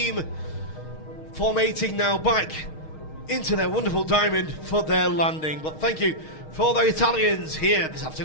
formating now back into their wonderful Diamond for their landing. But thank you for the Italians here this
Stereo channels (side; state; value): right; late; 6.4 ms